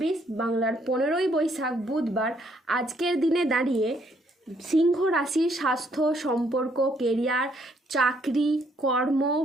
বাংলার 15ই বৈশাখ বুধবার আজকের দিনে দাঁড়িয়ে সিংহ রাশির স্বাস্থ্য, সম্পর্ক, কেরিয়ার, চাকরি, কর্ম,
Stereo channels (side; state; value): both; normal; correlation 0.69